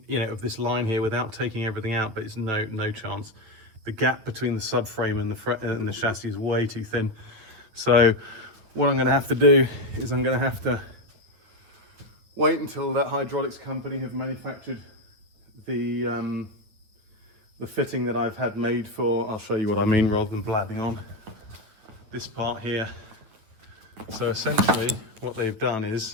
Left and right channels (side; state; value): left; late; 9.4 ms